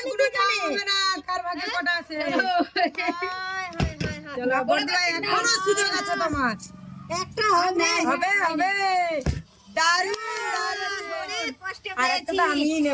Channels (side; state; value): both; identical; correlation 1.00